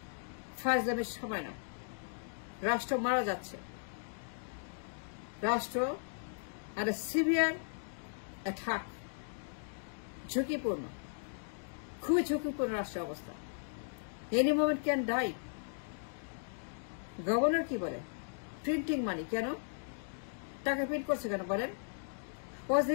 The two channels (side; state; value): right; silent; digital silence